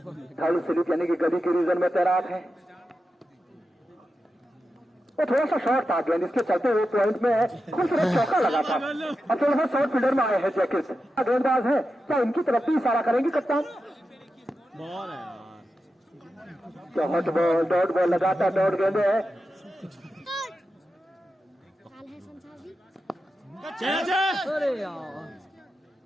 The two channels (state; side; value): normal; both; correlation 0.90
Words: थर्ड स्लिप यानी कि गली के रीजन में तैनात है। वो थोड़ा सा शॉर्ट था गेंद, इसके चलते हुए पॉइंट में खूबसूरत चौका लगा था। अब थोड़ा सा शॉर्ट फील्डर में आए हैं जैकेट गेंदबाज है। क्या इनकी तरफ भी इशारा करेंगे कप्तान? बॉल है हॉट बॉल डॉट बॉल लगाता डॉट गेंदे है। कैच है।